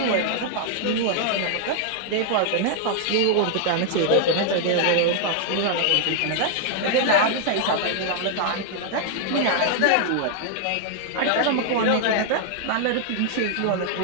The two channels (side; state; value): both; different; correlation 0.00